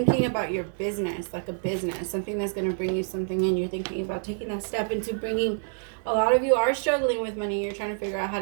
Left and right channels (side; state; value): left; silent; 60 dB below the other